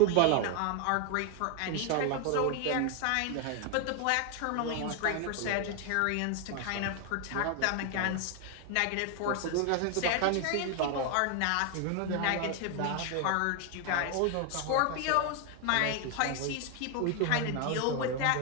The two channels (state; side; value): different; both; correlation 0.01